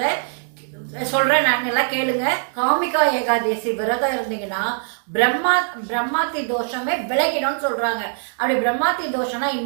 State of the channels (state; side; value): silent; left; digital silence